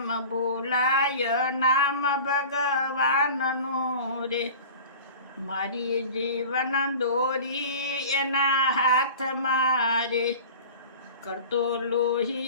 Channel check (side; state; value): both; inverted; correlation -0.39